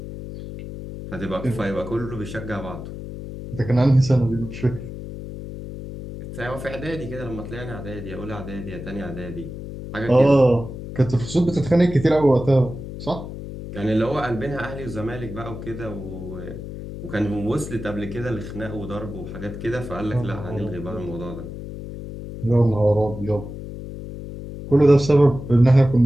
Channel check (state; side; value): noise; left; hum, 10 dB below the sound